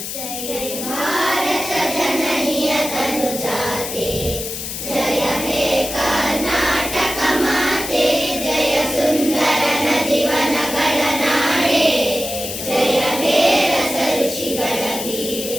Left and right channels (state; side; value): noise; left; hiss, 6 dB below the sound